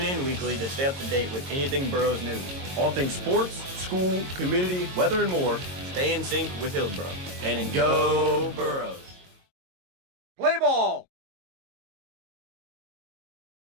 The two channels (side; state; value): left; late; 22 ms